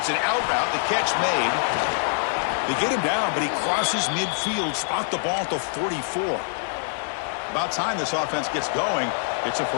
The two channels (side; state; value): right; silent; 57 dB below the other